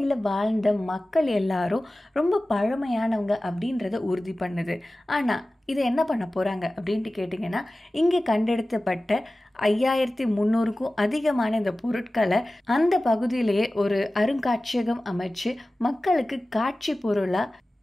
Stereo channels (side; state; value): both; normal; correlation 0.96